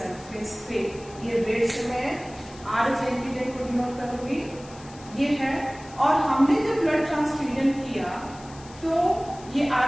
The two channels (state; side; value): noise; left; hiss, 21 dB below the sound